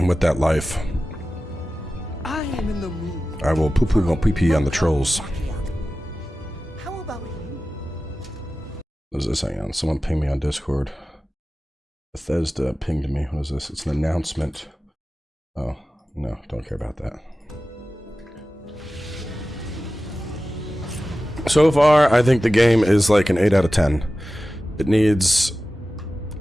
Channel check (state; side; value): normal; both; correlation 0.95